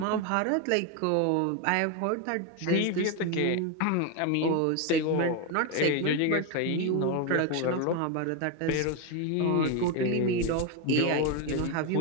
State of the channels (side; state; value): both; different; correlation 0.02